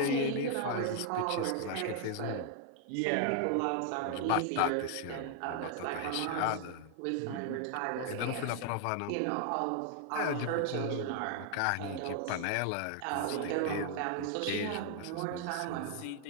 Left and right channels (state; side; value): different; both; correlation 0.00